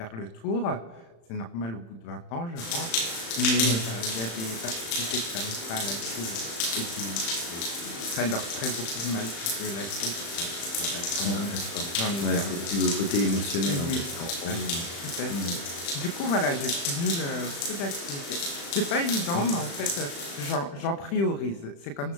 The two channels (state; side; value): late; right; 35 ms